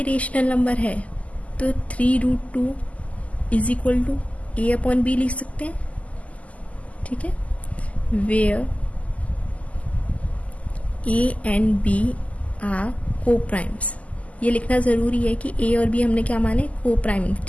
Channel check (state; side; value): late; right; 0.070 ms